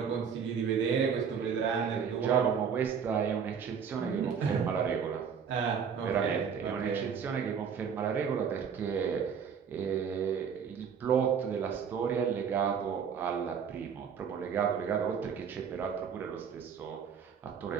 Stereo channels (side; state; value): left; quieter; 7.0 dB